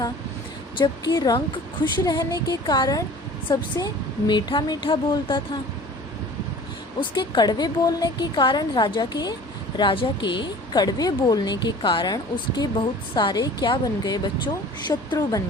जबकि रंक खुश रहने के कारण सबसे मीठा मीठा बोलता था। उसके कड़वे बोलने के कारण राजा के कड़वे बोलने के कारण उसके बहुत सारे क्या बन गए बच्चों? शत्रु बन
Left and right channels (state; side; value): normal; both; correlation 0.44